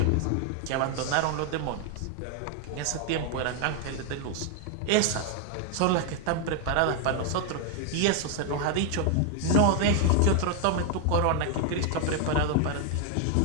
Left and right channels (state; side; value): different; both; correlation 0.00